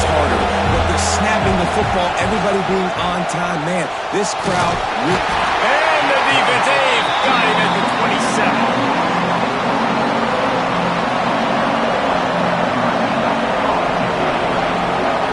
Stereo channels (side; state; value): both; identical; correlation 1.00